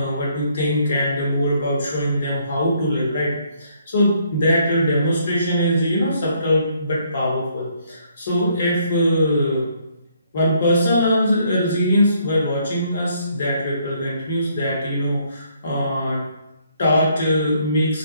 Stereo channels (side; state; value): both; inverted; correlation -0.68